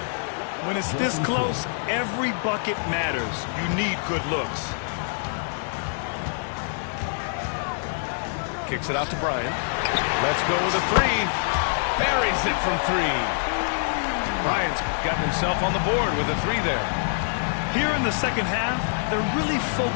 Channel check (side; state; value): right; silent; 62 dB below the other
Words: When it's this close, every bucket matters. You need good looks. Kicks it out to Bryant. Let's go with a three. Buries it from 3. Bryant's got himself on the board with a 3 there. Here in the second half, they're really